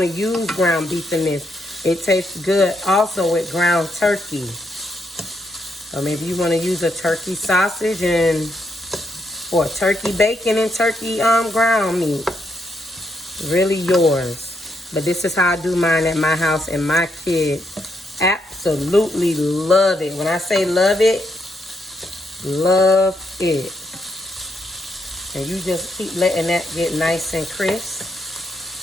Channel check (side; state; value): both; normal; correlation 0.78